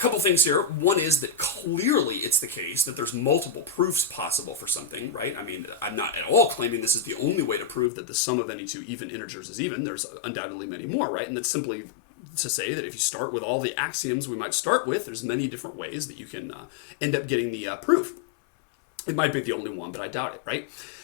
things here. One is that clearly it's the case that there's multiple proofs possible for something, right? I mean, I'm not at all claiming this is the only way to prove that the sum of any two even integers is even. There's undoubtedly many more, right? And that's simply to say that if you start with all the axioms we might start with, there's many different ways that you can end up getting the proof. It might be the only one, but I doubt it, right?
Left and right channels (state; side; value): drops out; right; at 7.9 s